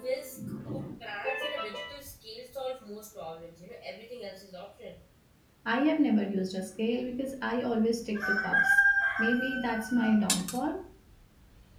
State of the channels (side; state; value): both; identical; correlation 1.00